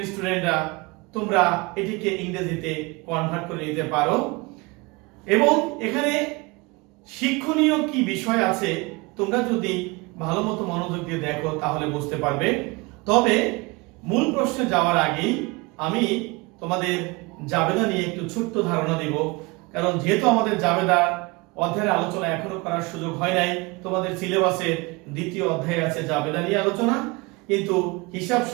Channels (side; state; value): left; quieter; 25.6 dB